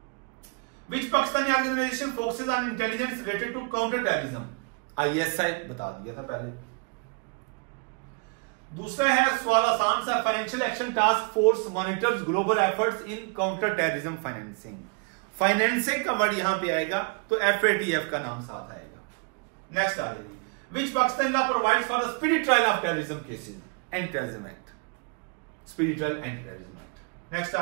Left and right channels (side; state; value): left; quieter; 34.5 dB